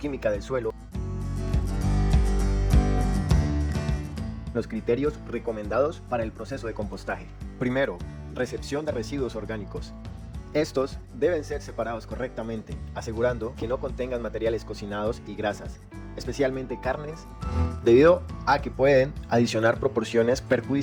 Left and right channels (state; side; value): identical; both; correlation 1.00